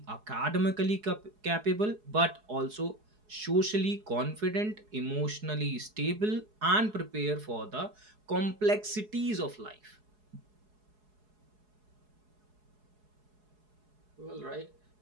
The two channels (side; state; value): left; late; 4.7 ms